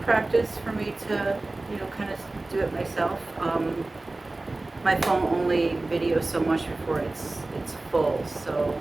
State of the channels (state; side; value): quieter; left; 3.0 dB